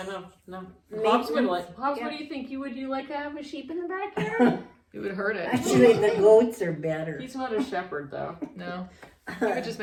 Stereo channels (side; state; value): both; identical; correlation 1.00